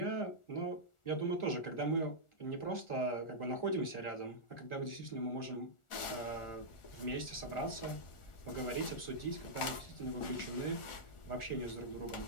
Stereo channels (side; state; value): right; late; 1.4 ms